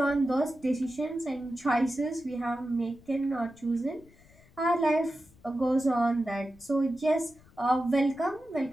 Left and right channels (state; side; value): noise; left; rumble, 26 dB below the sound